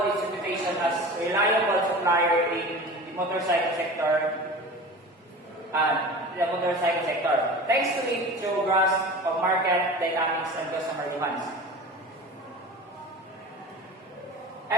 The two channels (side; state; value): both; normal; correlation 0.35